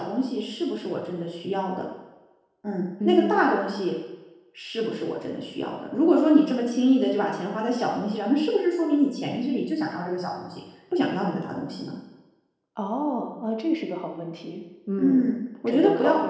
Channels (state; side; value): identical; both; correlation 1.00